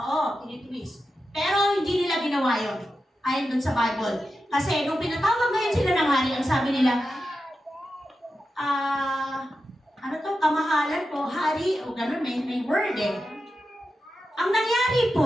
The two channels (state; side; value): normal; both; correlation 0.90